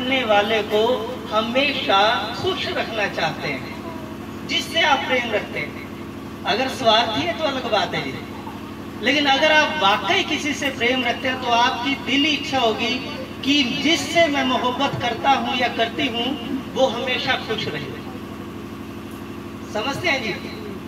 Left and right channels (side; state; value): both; identical; correlation 1.00